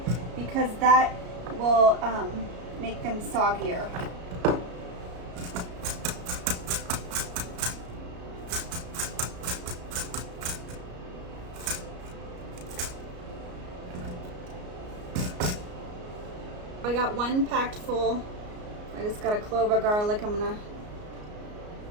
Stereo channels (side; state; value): left; late; 33 ms